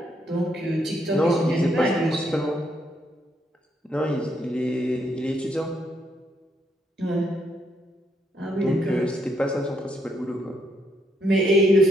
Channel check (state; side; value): normal; both; correlation 0.75